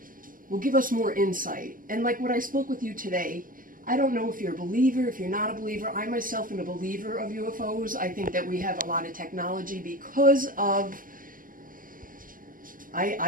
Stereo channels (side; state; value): left; late; 0.41 ms